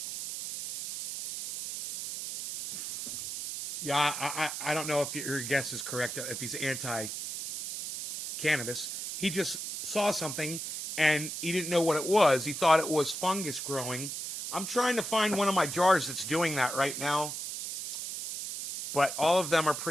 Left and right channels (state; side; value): noise; right; hiss, 6 dB below the sound